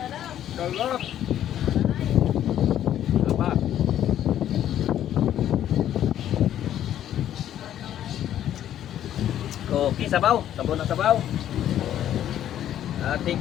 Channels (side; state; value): right; quieter; 11.2 dB